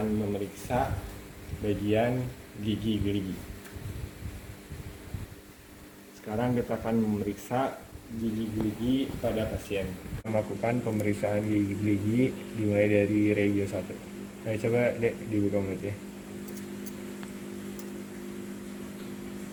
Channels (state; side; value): identical; both; correlation 1.00